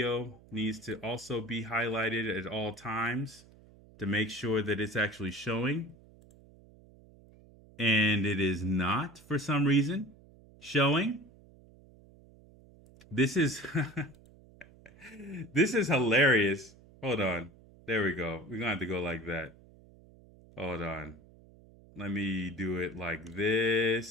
needs to also be highlighted at all times to make sure that it's actually showing. And it is not, for some reason, showing. This is this is hilarious. Hold on. There we go. We're going to have to go like that. Hold on. Let me do it like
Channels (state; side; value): noise; right; hum, 24 dB below the sound